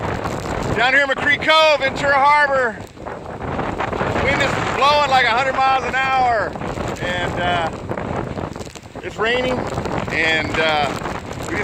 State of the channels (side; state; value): both; identical; correlation 1.00